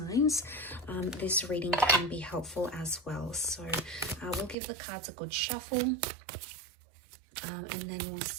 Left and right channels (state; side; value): drops out; left; at 4.5 s